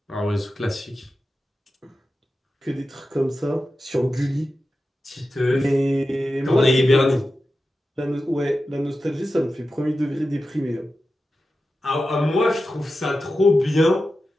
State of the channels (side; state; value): both; normal; correlation 0.92